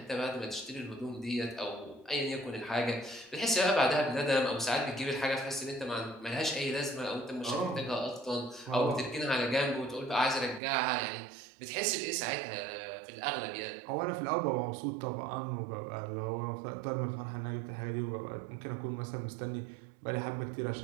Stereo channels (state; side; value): drops out; left; at 10.6 s